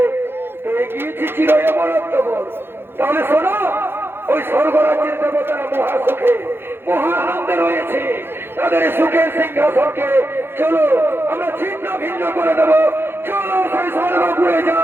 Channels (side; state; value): left; late; 0.11 ms